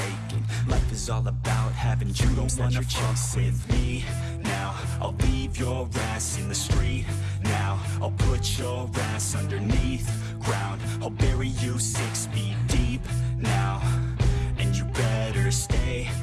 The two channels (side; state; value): both; identical; correlation 1.00